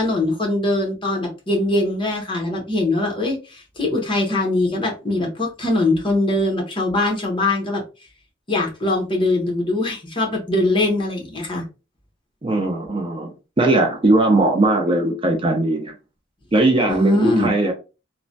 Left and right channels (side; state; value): both; normal; correlation 0.57